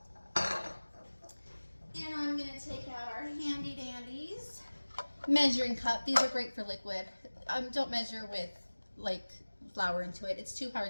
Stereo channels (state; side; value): inverted; both; correlation -1.00